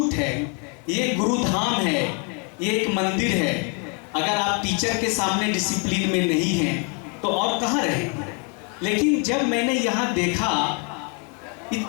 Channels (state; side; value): quieter; right; 36.9 dB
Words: है, ये गुरुधाम है, ये एक मंदिर है। अगर आप टीचर के सामने डिसिप्लिन में नहीं हैं तो और कहाँ रहेंगे। लेकिन जब मैंने यहाँ देखा